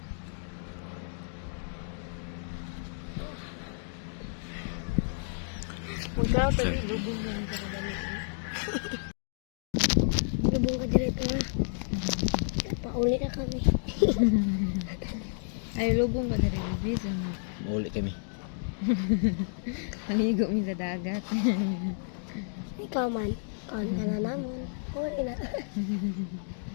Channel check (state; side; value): silent; right; digital silence